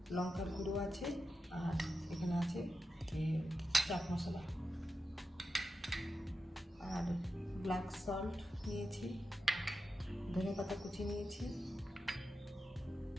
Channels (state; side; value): normal; both; correlation 0.90